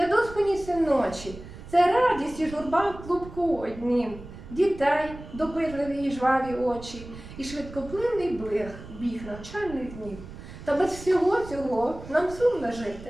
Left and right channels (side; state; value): right; noise; rumble, 15 dB below the sound